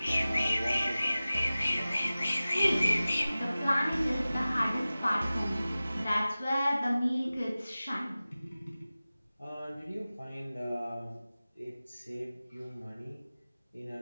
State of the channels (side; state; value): both; inverted; correlation -0.97